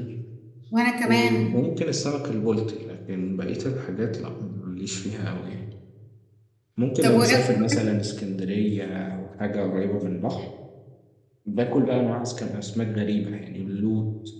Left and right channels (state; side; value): identical; both; correlation 1.00